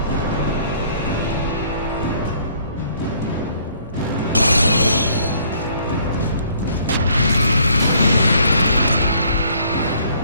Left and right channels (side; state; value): both; inverted; correlation -0.61